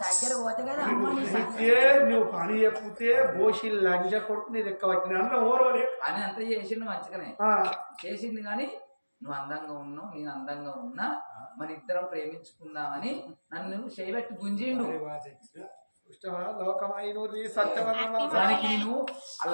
దగ్గర పోతే కదా అమ్మ నీ నువ్వు పని చెప్తే బోషి లంజ కొడుకు నీ లెక్క పట్టిన అన్న ఓరవలే అని అంతా చేసిండు మంచిగానే చేసిండు కానీ నువ్వు అందంగా ఉన్నావు నేను అందంగా ఉన్నా మన ఇద్దరం ప్రేమించుకుందామని నన్ను చేయబెట్టి గుంజిండు దానికి నేను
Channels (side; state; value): both; inverted; correlation -1.00